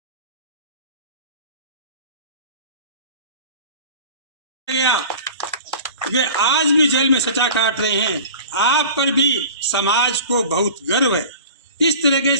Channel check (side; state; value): both; inverted; correlation -0.39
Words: वे आज भी जेल में सजा काट रहे हैं। आप पर भी समाज को बहुत गर्व है। इस तरीके